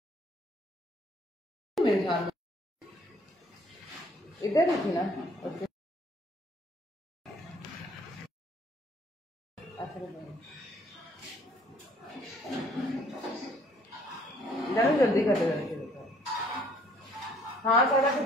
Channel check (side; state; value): both; normal; correlation 0.60